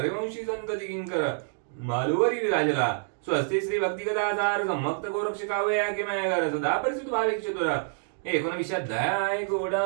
संत किंकर मालुवरी विराजला. स्वस्ती श्री भक्ती कथा सार सम्मक्त गोरक्ष काव्य किमय सदा परिचित भाविक चतुर. 19 अध्याय गोडा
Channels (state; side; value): silent; left; digital silence